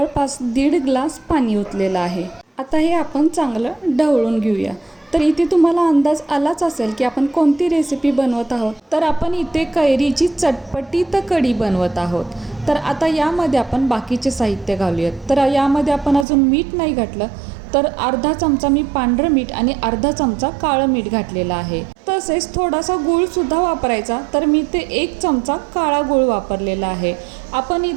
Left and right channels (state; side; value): drops out; left; at 16.2 s